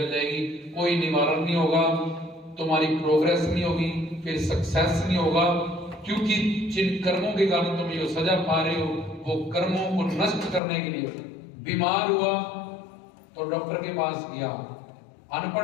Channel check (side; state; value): right; drops out; at 10.6 s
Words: जाएगी, कोई निवारण नहीं होगा, तुम्हारी प्रोग्रेस नहीं होगी, फिर सक्सेस नहीं होगा। क्योंकि जिन कर्मों के कारण तुम ये सजा पा रहे हो, वो कर्मों को नष्ट करने के लिए। बीमार हुआ तो डॉक्टर के पास गया,